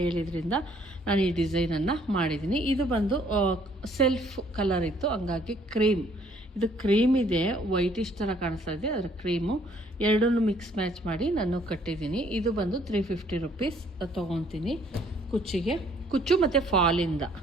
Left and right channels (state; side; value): normal; both; correlation 0.63